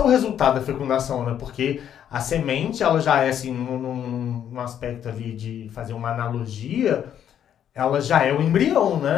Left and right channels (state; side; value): quieter; right; 9.6 dB